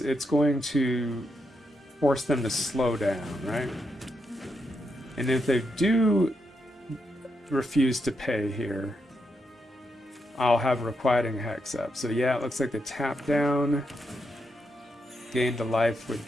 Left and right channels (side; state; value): both; normal; correlation 0.82